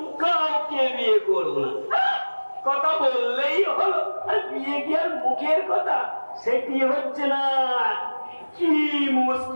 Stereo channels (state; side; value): inverted; both; correlation -1.00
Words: কাউকে বিয়ে করবো না। কথা বললেই হলো, আর বিয়ে কি আর মুখের কথা, সেটি হচ্ছে না। কি